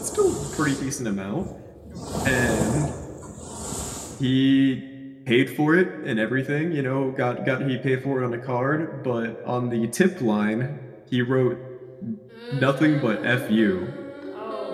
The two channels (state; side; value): identical; both; correlation 1.00